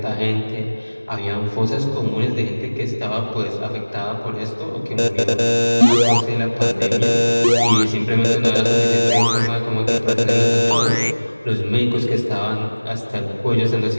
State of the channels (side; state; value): both; inverted; correlation -1.00